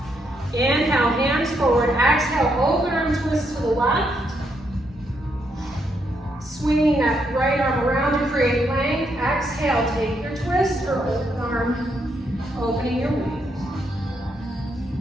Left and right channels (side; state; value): both; normal; correlation 0.77